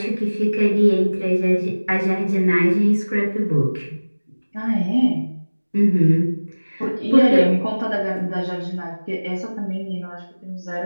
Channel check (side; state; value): both; inverted; correlation -1.00